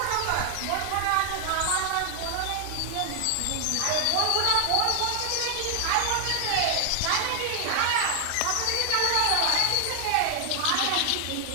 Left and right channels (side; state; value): both; different; correlation 0.00